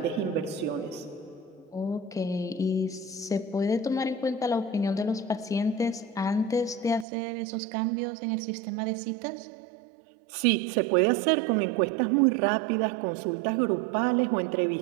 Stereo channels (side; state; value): left; drops out; at 7.1 s